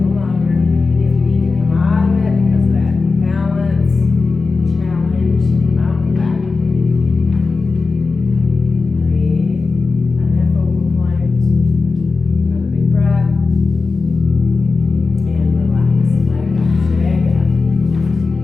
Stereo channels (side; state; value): right; quieter; 4.1 dB